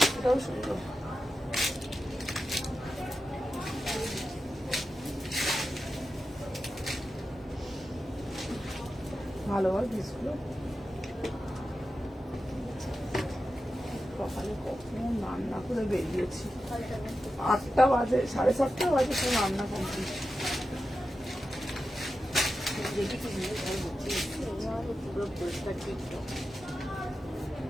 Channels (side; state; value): both; normal; correlation 0.91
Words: এটাও সুন্দর। ভালো হয় পিসগুলো। সকালে কখন রান্না করে বেরিয়েছি, 8টা বাজে, 7:30 বাজে, সব রান্না কমপ্লিট। দেখি কি নিয়ে ঘর হচ্ছে পুরো পরিষ্কার টিকটক